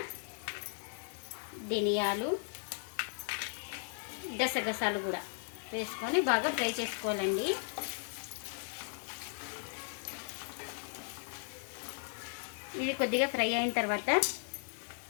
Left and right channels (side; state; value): right; silent; 54 dB below the other